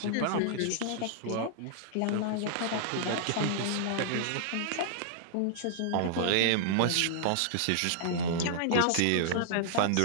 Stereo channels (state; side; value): different; both; correlation -0.01